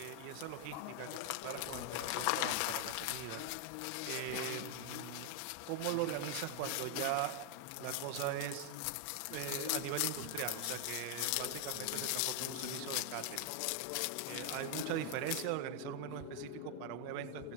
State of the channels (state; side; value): different; both; correlation 0.00